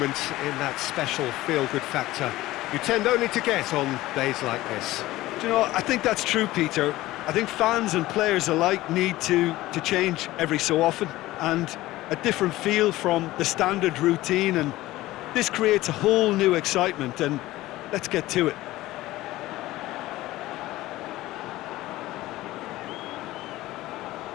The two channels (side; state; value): right; quieter; 17.1 dB